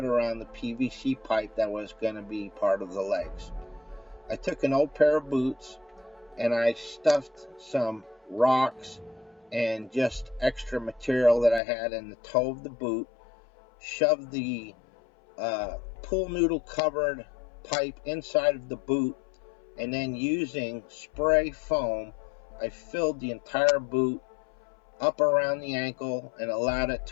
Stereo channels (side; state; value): right; drops out; at 11.6 s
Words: around the PVC pipe that was going to be part of the legs. I took an old pair of boots and I stuffed some rocks and just extra material that I had in the toe of the boot, shoved the pool noodle covered pipe inside of the boot, and then using spray foam, I filled the entire boot up around the ankle and allowed it